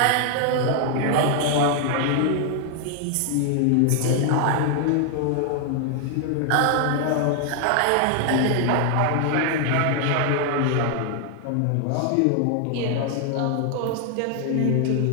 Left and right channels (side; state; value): both; different; correlation 0.00